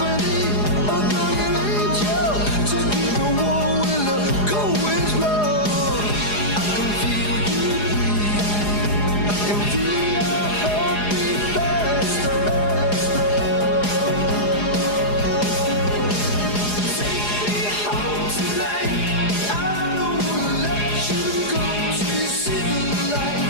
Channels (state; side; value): late; right; 4.8 ms